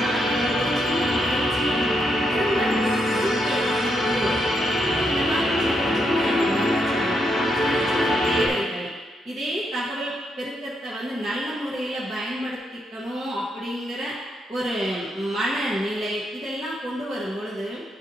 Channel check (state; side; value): normal; both; correlation 0.79